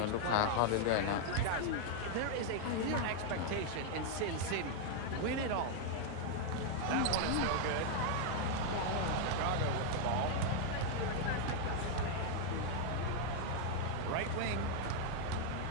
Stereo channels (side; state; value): both; different; correlation 0.00